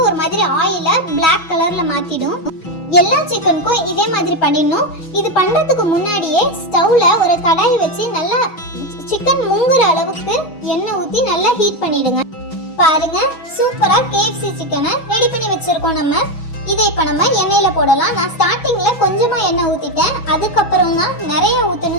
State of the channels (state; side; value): late; right; 6.2 ms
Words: ஒரு மாதிரி ஆயில பிளாக் கலர்ல மாத்திடும். எல்லா சிக்கனுக்கும் இதே மாதிரி பண்ணிடணும். இது பண்றதுக்கு முன்னாடியே ஸ்டவ்ல ஒரு கடாய் வச்சு நல்லா சிக்கன் முங்குற அளவுக்கு எண்ணெய் ஊற்றி நல்லா ஹீட் பண்ணிடுங்க. பாருங்க, சூப்பரா KFC சிக்கனை ரெடி பண்ணி வச்சிருக்கோம். நம்ம இதை இப்போ நம்ம எண்ணெயில போடலாம். நான் ஸ்டார்டிங்ல கொஞ்சமா எண்ணெய் ஊத்திட்டேன். அதுக்கப்புறம் தான் நிறைய